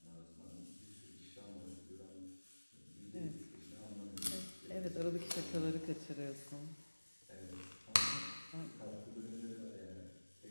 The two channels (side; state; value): both; inverted; correlation -1.00